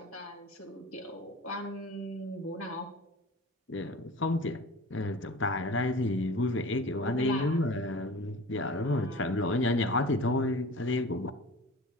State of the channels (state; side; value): normal; both; correlation 0.40